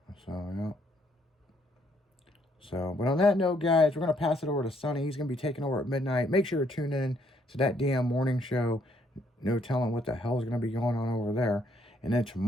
So, yeah. So, but on that note, guys, we're going to pass it over to Sonny. He's going to be taking over at midnight. Make sure to tune in to that damn morning show. No telling what the hell is going to be going on over there. And then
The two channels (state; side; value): normal; both; correlation 0.69